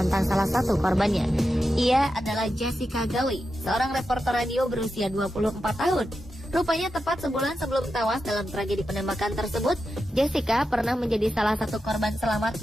salah satu korbannya. Ia adalah Jessica Gawi, seorang reporter radio berusia 24 tahun. Rupanya tepat sebulan sebelum tewas dalam tragedi penembakan tersebut, Jessica pernah menjadi salah satu korban selamat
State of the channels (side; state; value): both; normal; correlation 0.89